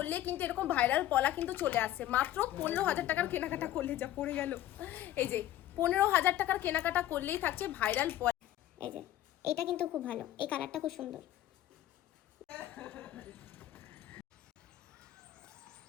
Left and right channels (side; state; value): right; quieter; 13.3 dB